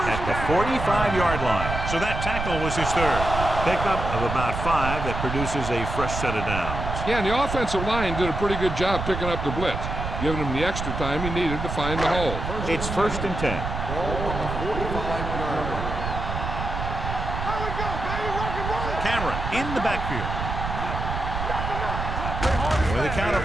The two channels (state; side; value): noise; right; rumble, 4 dB below the sound